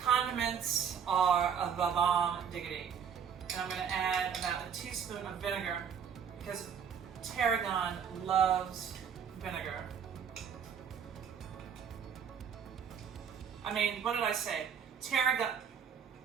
are a bomb diggity. And I'm going to add about a teaspoon of vinegar because Tarragon loves vinegar. I mean, what did I say? Tarragon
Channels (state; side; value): quieter; left; 7.5 dB